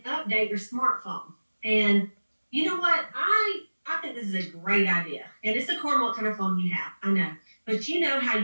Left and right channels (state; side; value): inverted; both; correlation -1.00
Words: update your smartphone. And you know what? I think this is a great idea. And it's according to what kind of phone you have, I know. But you know how